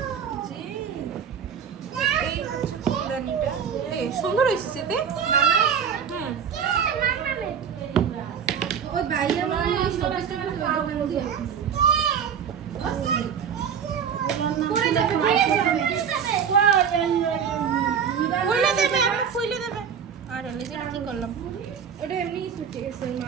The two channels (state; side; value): quieter; left; 7.4 dB